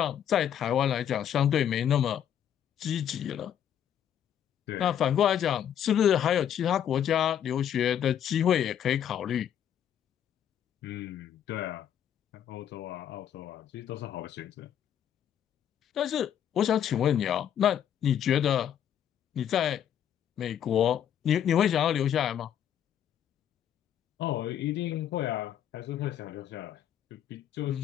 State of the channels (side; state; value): right; quieter; 9.7 dB